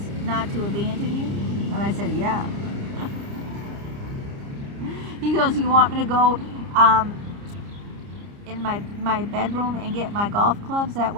not to abandon you? And I said, yeah. He goes, you want me to go in my bedroom and get my golf clubs? That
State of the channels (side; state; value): left; late; 30 ms